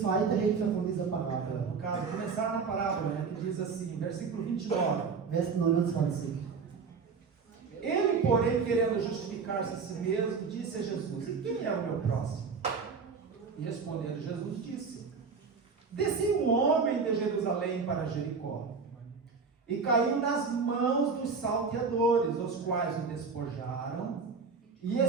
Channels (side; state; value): left; quieter; 5.2 dB